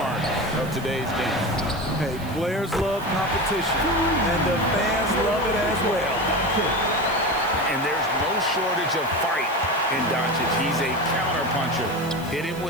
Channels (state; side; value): noise; right; hiss, 19 dB below the sound